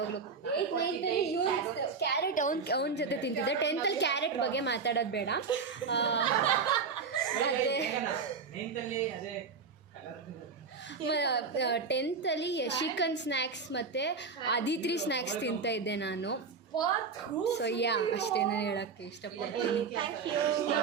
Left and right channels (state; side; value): quieter; left; 5.2 dB